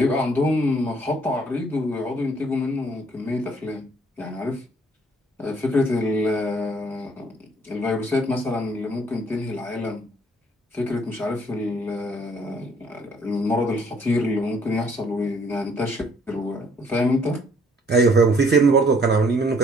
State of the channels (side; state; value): both; normal; correlation 0.62